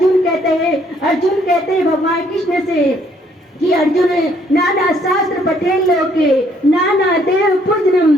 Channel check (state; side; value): normal; both; correlation 0.66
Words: कहते हैं भगवान कृष्ण से कि अर्जुन नाना शास्त्र पठेन लोके नाना देव पूजनम